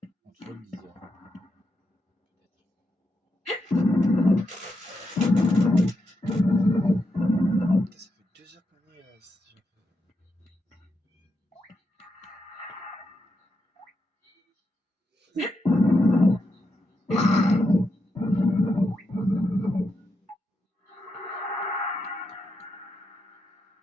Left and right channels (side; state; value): both; normal; correlation 0.84